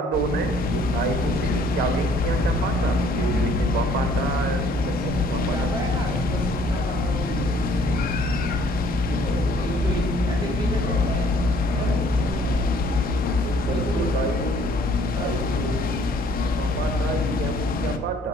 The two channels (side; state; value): both; normal; correlation 0.60